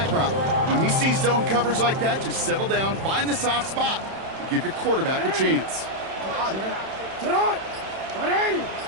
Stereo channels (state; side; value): late; left; 31 ms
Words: route. When he sees zone coverage like that, just settle down, find the soft spot, and give your quarterback a chance.